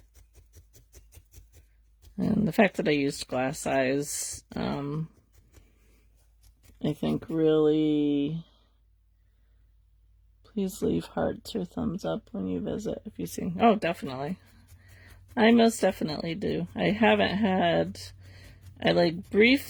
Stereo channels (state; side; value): identical; both; correlation 1.00